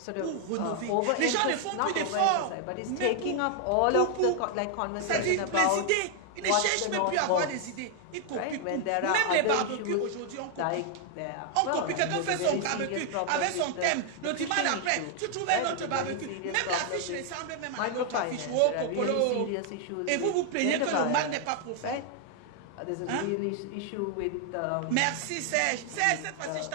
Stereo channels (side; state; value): both; different; correlation 0.00